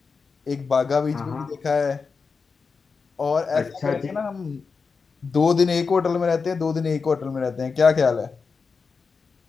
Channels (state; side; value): quieter; right; 5.0 dB